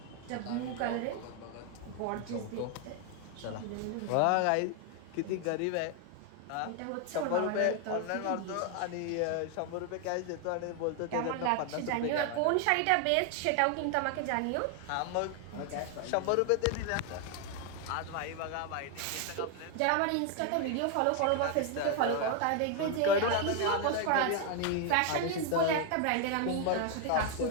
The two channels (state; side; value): different; both; correlation 0.01